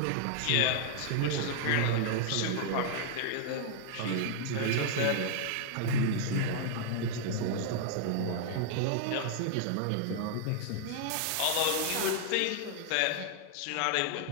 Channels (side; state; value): both; different; correlation 0.00